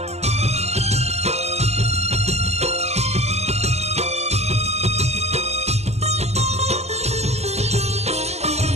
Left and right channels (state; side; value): late; left; 0.31 ms